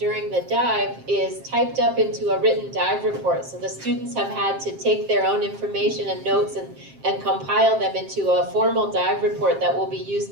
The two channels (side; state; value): left; late; 7.5 ms